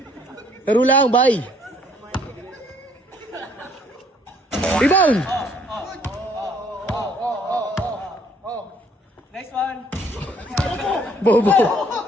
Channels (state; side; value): normal; both; correlation 0.62